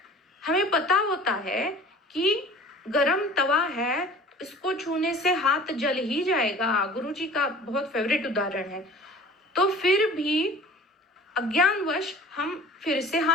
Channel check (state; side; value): normal; both; correlation 0.44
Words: हमें पता होता है कि गरम तवा है, इसको छूने से हाथ जल ही जाएगा, गुरुजी का बहुत फेवरेट उदाहरण है। तो फिर भी अज्ञानवश हम फिर से